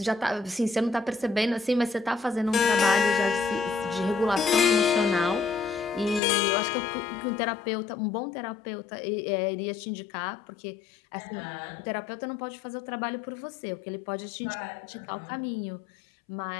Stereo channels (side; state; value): right; drops out; at 6.2 s